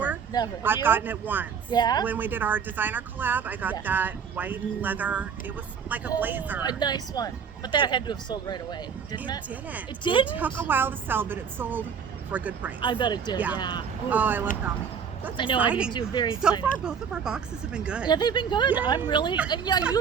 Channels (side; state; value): left; quieter; 6.9 dB